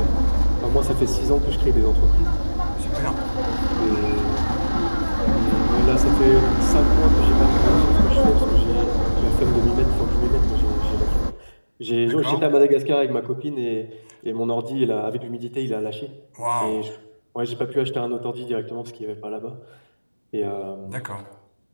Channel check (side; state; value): both; inverted; correlation -1.00